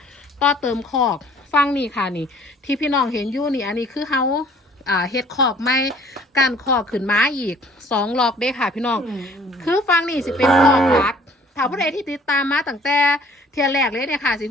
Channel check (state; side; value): normal; both; correlation 0.55